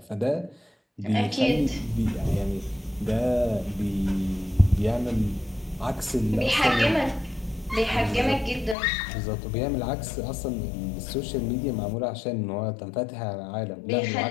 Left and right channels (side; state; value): right; drops out; at 8.8 s